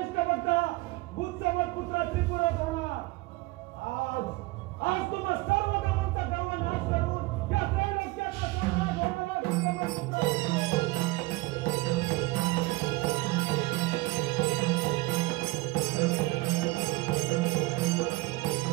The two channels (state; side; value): quieter; left; 22.0 dB